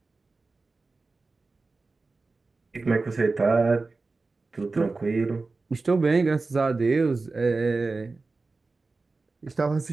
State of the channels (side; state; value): left; quieter; 3.7 dB